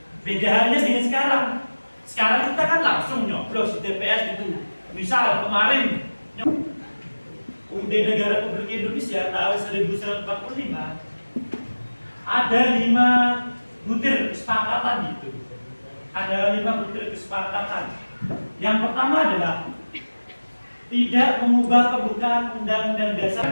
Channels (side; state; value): both; inverted; correlation -1.00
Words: Beda halnya dengan sekarang. Sekarang kita kan langsung nyoblos di TPS gitu. Misal kemarin UUD Negara Republik Indonesia tahun 1945 ada 5 butir kesepakatan gitu. Ada 5 butir kesepakatan. Yang pertama adalah tidak mengubah pembukaan undang-undang